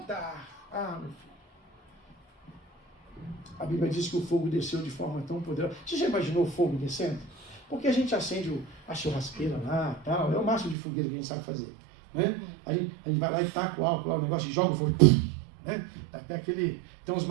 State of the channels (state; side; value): drops out; left; at 10.8 s